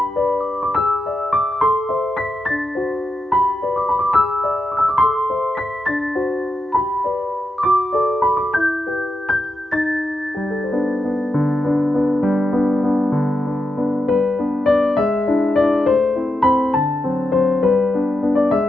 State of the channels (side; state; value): both; normal; correlation 0.87